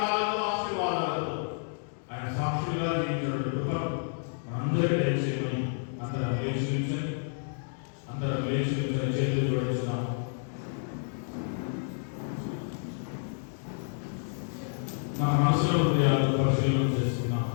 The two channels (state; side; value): silent; right; digital silence